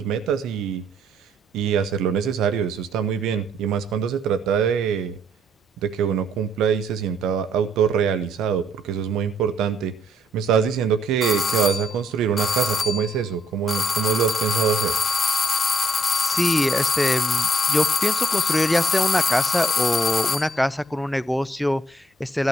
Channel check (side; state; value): both; normal; correlation 0.70